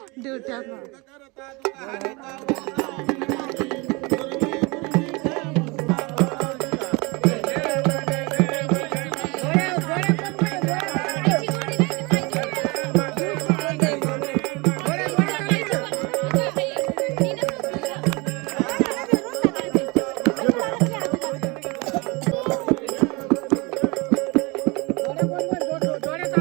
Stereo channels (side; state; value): left; quieter; 26.7 dB